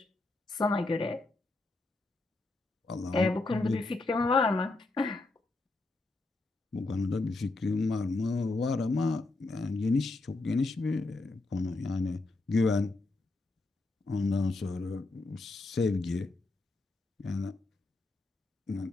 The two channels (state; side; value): quieter; right; 3.2 dB